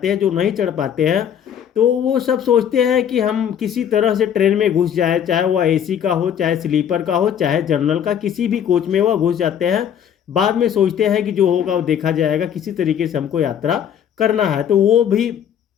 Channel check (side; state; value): right; quieter; 9.0 dB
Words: हैं, जो नहीं चढ़ पाते हैं, तो वो सब सोचते हैं कि हम किसी तरह से ट्रेन में घुस जाए, चाहे वह एसी का हो, चाहे स्लीपर का हो, चाहे जनरल का, किसी भी कोच में वह घुस जाते हैं। बाद में सोचते हैं कि जो होगा वो देखा जाएगा, किसी तरीके से हमको यात्रा करना है। तो वो भी